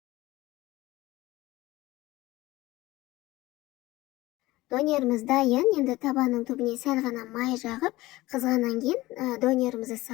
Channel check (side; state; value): right; quieter; 18.6 dB